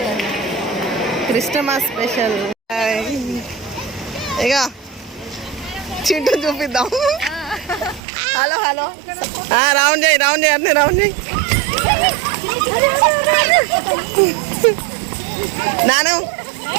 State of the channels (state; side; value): drops out; left; at 8.0 s